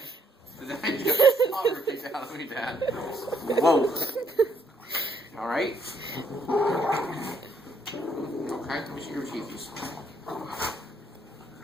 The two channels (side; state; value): both; normal; correlation 0.70